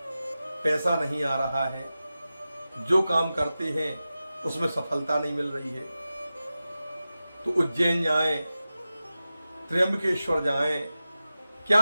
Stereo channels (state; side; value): inverted; both; correlation -0.94